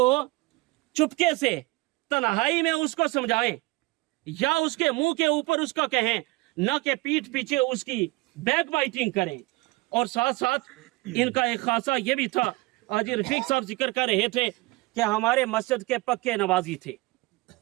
चुपके से तन्हाई में उसको समझाएं या उसके मुंह के ऊपर उसका कहें, न कि पीठ पीछे उसकी बैक बाइटिंग करें। और साथ साथ इनका एक खासा ये भी था, आज रफीक साहब जिक्र कर रहे थे कि हमारे मस्जिद के पक्के नवाजी थे,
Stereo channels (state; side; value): quieter; left; 22.6 dB